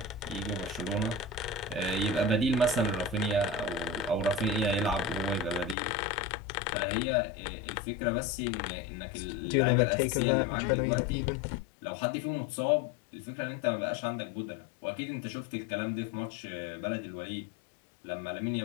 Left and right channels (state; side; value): drops out; right; at 5.8 s